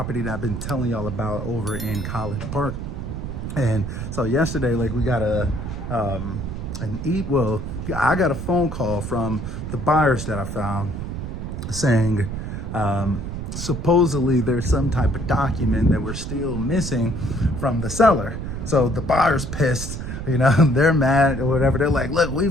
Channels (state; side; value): noise; right; rumble, 6 dB below the sound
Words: that I've been telling y'all about over in College Park. And so yesterday, like, we got I got a phone call from the buyers that I found saying, supposedly there's some type of document that we're still missing from the seller. So the buyer's pissed, they're mad or whatever. They're like, look,